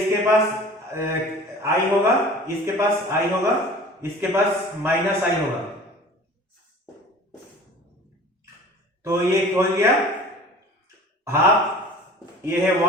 पास i होगा, इसके पास i होगा, इसके पास माइनस i होगा। तो ये हो गया हाफ, ये है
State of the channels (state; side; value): normal; both; correlation 0.43